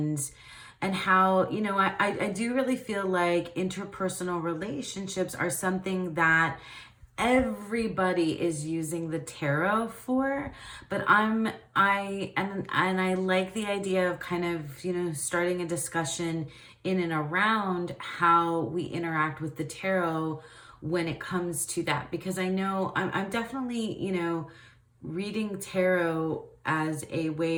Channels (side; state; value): both; identical; correlation 1.00